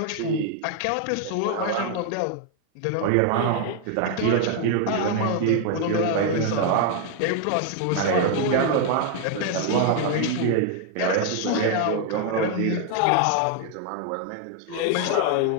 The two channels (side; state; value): both; different; correlation 0.00